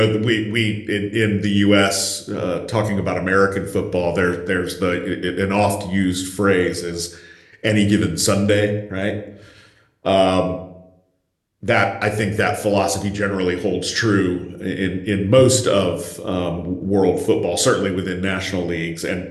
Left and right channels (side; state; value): both; identical; correlation 1.00